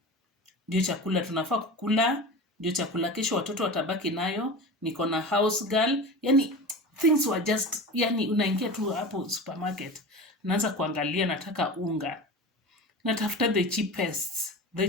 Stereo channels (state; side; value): normal; both; correlation 0.31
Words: ndio chakula tunafaa kukula, ndio chakula kesho watoto watabaki nayo, niko na house girl. Yani things were just, yani unaingia tu hapo supermarket, naanza kuangalia, nataka unga, natafuta the